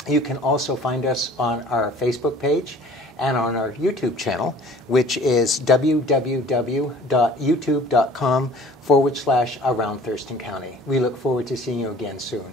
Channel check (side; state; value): both; normal; correlation 0.49